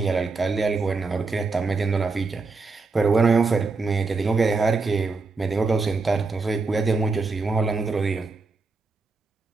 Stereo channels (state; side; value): quieter; left; 4.1 dB